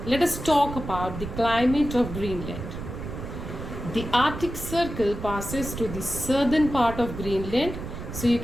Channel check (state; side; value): noise; right; rumble, 8 dB below the sound